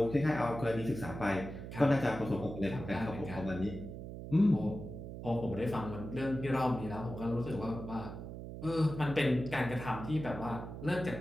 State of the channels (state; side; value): noise; right; hum, 9 dB below the sound